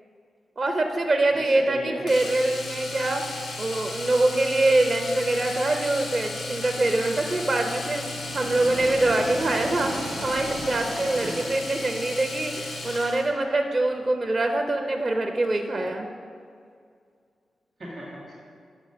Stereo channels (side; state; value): both; normal; correlation 0.94